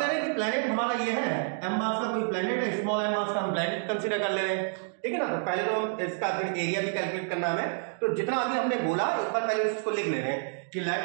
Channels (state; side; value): silent; left; digital silence